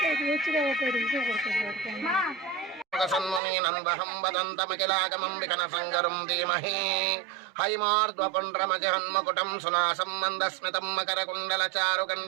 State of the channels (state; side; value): drops out; left; at 3.4 s